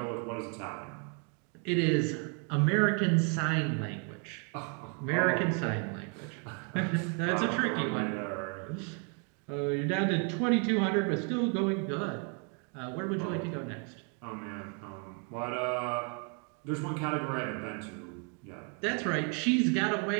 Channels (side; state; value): left; quieter; 39.0 dB